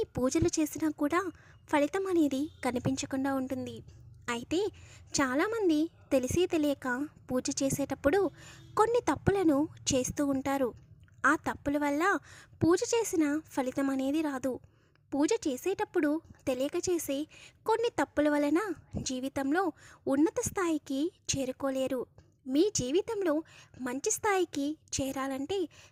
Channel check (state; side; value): identical; both; correlation 1.00